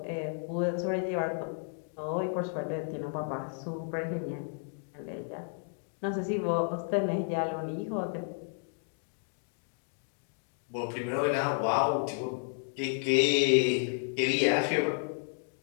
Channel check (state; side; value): silent; right; 56 dB below the other